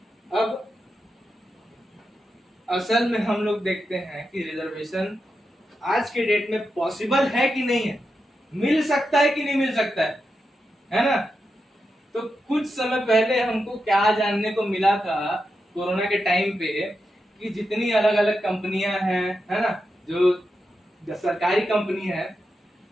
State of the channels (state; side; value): normal; both; correlation 0.88